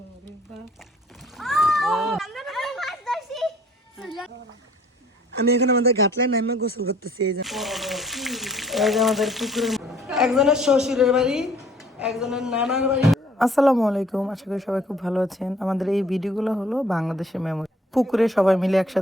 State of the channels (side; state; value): both; normal; correlation 0.57